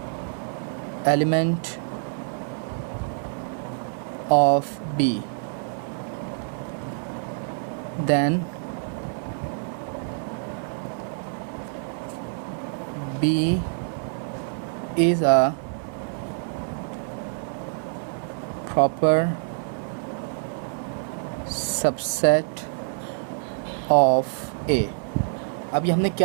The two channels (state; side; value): silent; left; digital silence